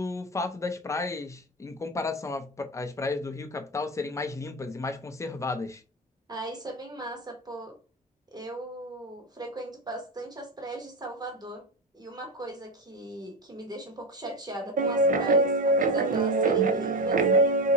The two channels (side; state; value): both; normal; correlation 0.16